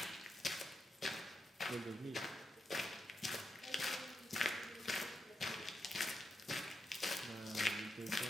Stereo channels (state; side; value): normal; both; correlation 0.85